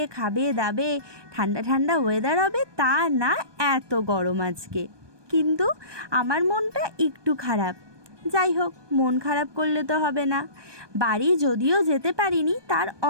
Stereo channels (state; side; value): late; left; 1.2 ms